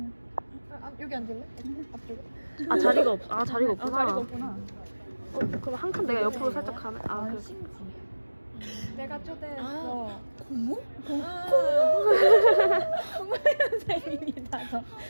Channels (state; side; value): inverted; both; correlation -1.00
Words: 여기 앉을래? 앞쪽에? 자리가 없구나. 자리가 없구나. 그럼 한 칸 내가 옆으로 살짝 가네. 그래. 내가 초대했어. 고모? 선생님이다 저.